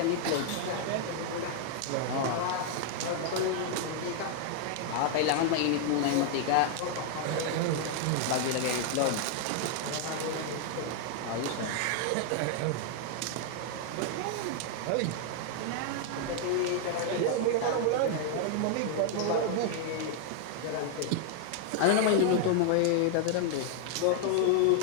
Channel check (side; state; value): both; different; correlation 0.00